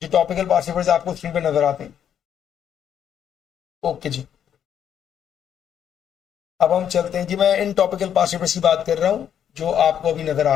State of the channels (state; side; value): quieter; right; 9.2 dB